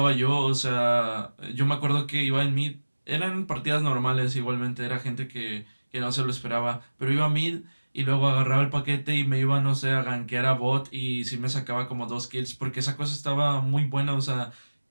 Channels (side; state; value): both; inverted; correlation -1.00